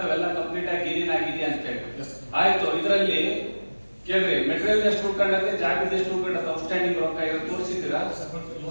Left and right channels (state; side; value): inverted; both; correlation -1.00